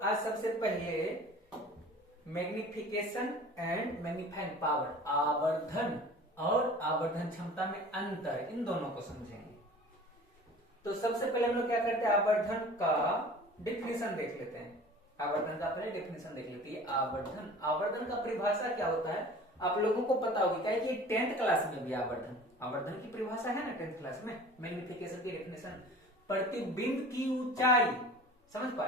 आज? सबसे पहले मैग्निफिकेशन एंड मैग्नीफाइंग पावर, आवर्धन और आवर्धन क्षमता में अंतर, इन दोनों को समझेंगे। तो सबसे पहले हम लोग क्या करते हैं, आवर्धन का डिफिनेशन देख लेते हैं। आवर्धन का पहले डिफिनेशन देख लेते हैं। आवर्धन, आवर्धन का परिभाषा क्या होता है आप लोगों को पता होगी, क्या है कि 10th क्लास में भी आवर्धन, आवर्धन की परिभाषा है ना 10th क्लास में। मैग्निफिकेशन की डेफिनेशन, प्रतिबिंब की ऊंचाई, समझ पा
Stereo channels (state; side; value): normal; both; correlation 0.43